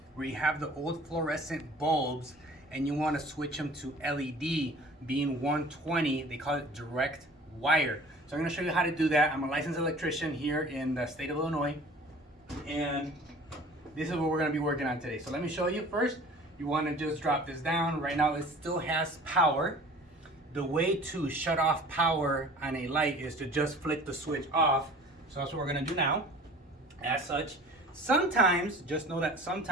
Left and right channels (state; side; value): normal; both; correlation 0.46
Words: where you have the old fluorescent bulbs and you want to switch them to LED being 120, they call it direct wire. So I'm going to show you how to do that. I'm a licensed electrician here in the state of Illinois, and this is what we're going to be working on today. So let me show you first. You want to just drop this down. Right now it still has power. The way to shut off power on a light is to just flick the switch off. So that's what we're going to do now. As such, sometimes, just know that